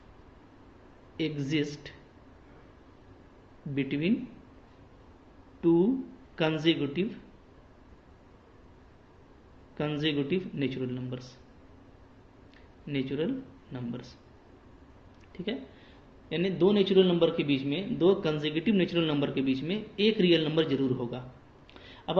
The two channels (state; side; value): identical; both; correlation 1.00